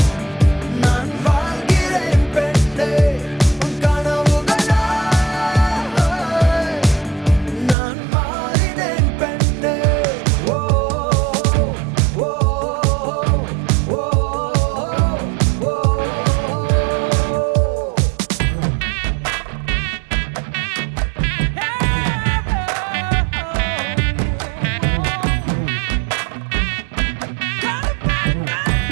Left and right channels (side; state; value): left; drops out; at 7.8 s